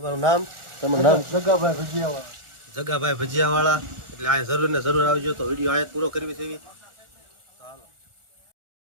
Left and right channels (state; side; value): late; left; 1.4 ms